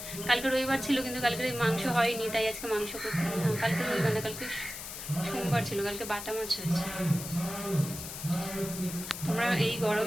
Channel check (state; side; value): noise; left; hiss, 9 dB below the sound